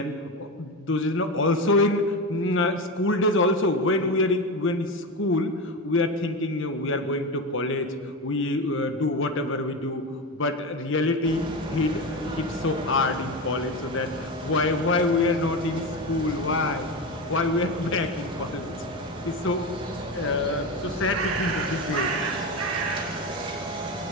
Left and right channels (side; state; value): both; normal; correlation 0.20